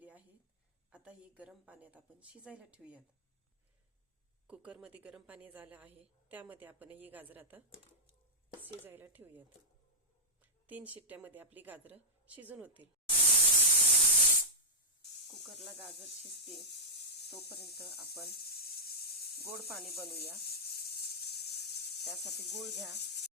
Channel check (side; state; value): both; normal; correlation -0.07